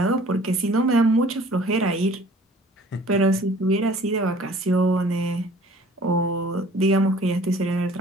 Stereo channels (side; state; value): both; normal; correlation 0.51